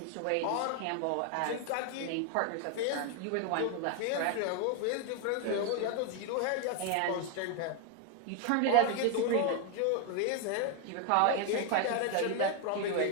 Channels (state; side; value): different; both; correlation 0.01